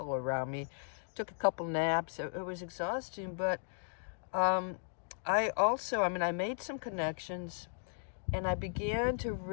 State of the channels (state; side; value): silent; right; digital silence